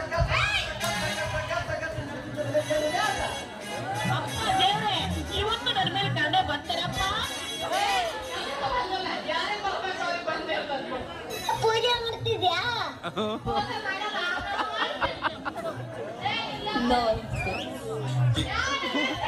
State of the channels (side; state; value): both; identical; correlation 1.00